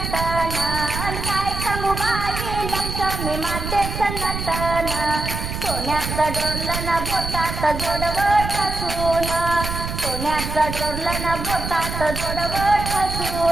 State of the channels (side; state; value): right; noise; rumble, 5 dB below the sound